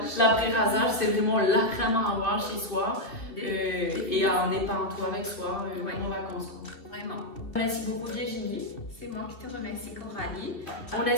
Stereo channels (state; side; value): late; right; 2.7 ms